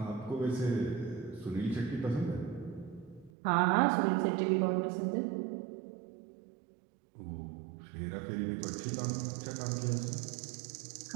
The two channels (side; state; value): left; drops out; at 3.3 s